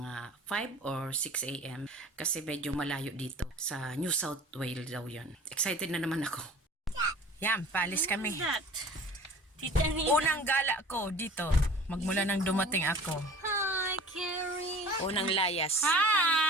5 or 6 a.m. kasi medyo malayo dito. Sa New South Wales daw yun. Excited na naman ako. Yan, paalis kami. Unang gala ko dito. Magmula nang dumating ako. Hi, Carrie. Unang layas.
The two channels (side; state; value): both; normal; correlation 0.44